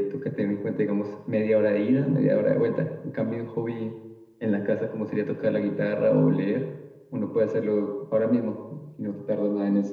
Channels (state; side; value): identical; both; correlation 1.00